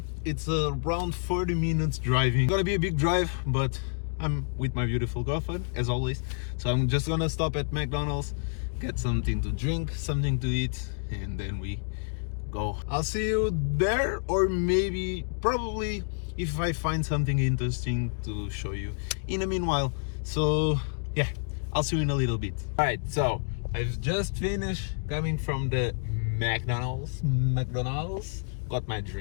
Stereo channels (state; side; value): silent; right; digital silence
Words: It's around 40 minutes driving. It's gonna be a big drive, but I'm with my beautiful girlfriend, as always. So I'm just gonna stop at McDonald's, get something to drink, something to eat, and then we go. I'll see you there, or maybe, probably, if I find something interesting to show you in the meanwhile. So yeah, I'll see you in a little bit. All right, so I've just finished coming from the McDonald's. Got my